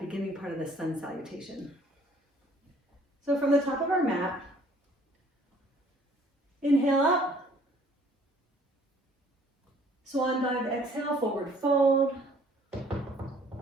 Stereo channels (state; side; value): normal; both; correlation 0.58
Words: part of the sun salutation. So from the top of our mat, inhale up, swan dive, exhale, forward fold.